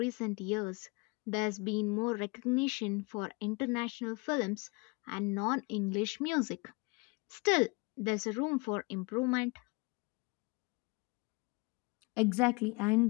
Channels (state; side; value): quieter; right; 28.2 dB